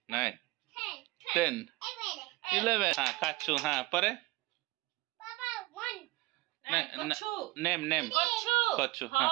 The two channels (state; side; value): quieter; left; 20.7 dB